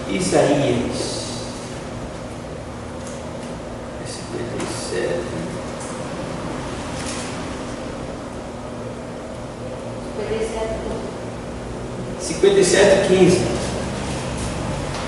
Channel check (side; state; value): both; identical; correlation 1.00